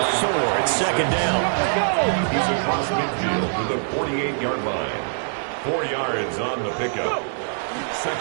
4 at second down. He's across midfield to the 48-yard line. 4 yards on the pickup.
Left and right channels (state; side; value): silent; left; 61 dB below the other